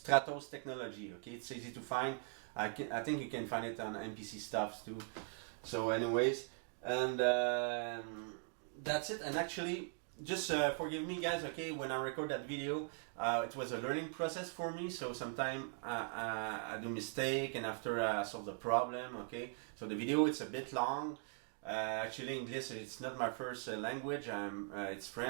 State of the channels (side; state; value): left; silent; 51 dB below the other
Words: Technology, okay. It's easy to find. I think you can find it on MPC stuffs too. So anyways, and that's it. And actually, just forgive me guys, okay, when I record that video, it was a learning process for me, so sometimes I do mistake and after I solve the problem, okay. So the video, it's a bit long. Actually English, it's not my first language. It's